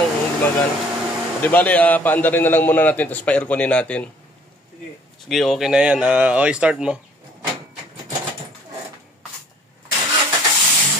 gumagana. Di bale, paandarin na lang muna natin, tapos pa-airconin natin. Sige. Sige, okay na yan. Okay, start mo.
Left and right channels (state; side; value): normal; both; correlation 0.57